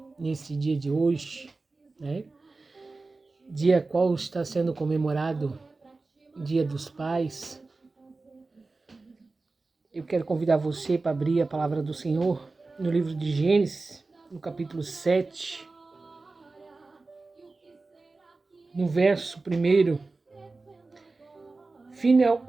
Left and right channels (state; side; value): quieter; left; 3.6 dB